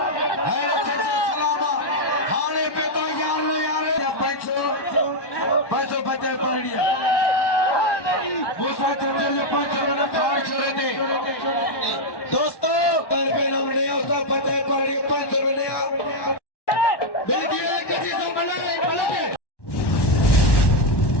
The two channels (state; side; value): late; right; 1.1 ms